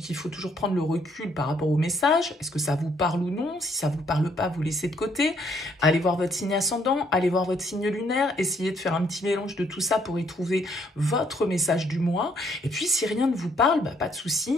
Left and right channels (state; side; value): normal; both; correlation 0.68